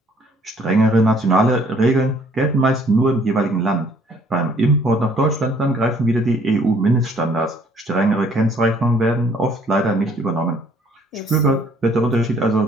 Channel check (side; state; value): both; normal; correlation 0.61